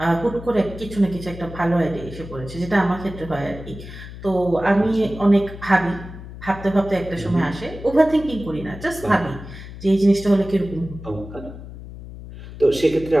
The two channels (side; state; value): left; noise; hum, 13 dB below the sound